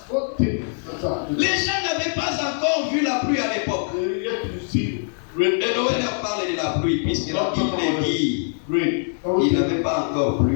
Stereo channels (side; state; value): right; silent; digital silence